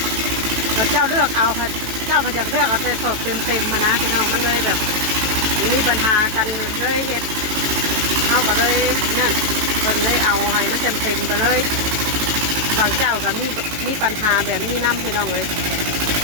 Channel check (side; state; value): left; late; 18 ms